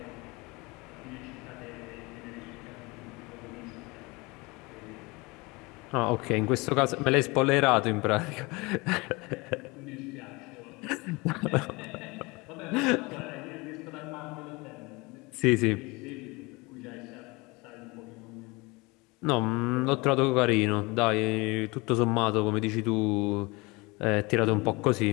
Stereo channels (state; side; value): quieter; right; 25.1 dB